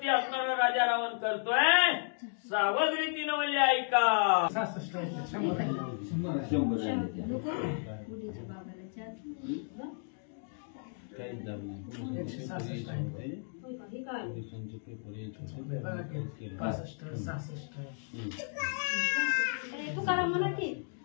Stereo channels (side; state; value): right; silent; 55 dB below the other